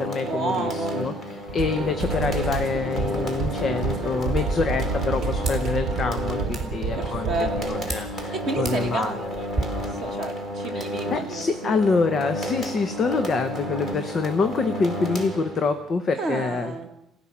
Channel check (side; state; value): both; normal; correlation 0.64